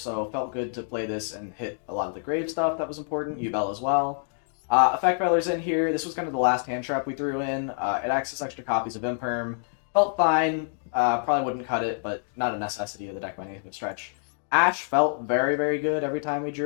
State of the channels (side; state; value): right; silent; digital silence